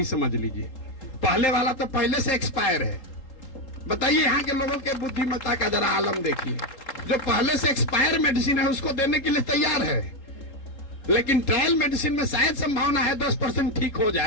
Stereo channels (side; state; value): right; late; 3.8 ms